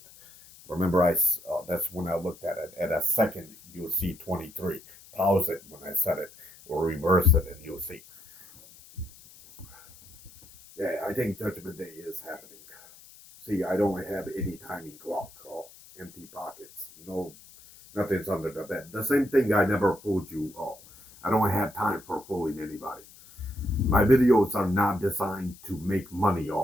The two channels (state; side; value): noise; left; hiss, 22 dB below the sound